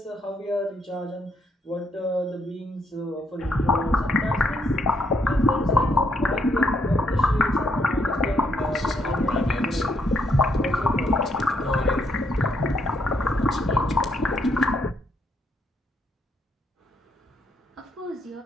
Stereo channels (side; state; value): both; normal; correlation 0.74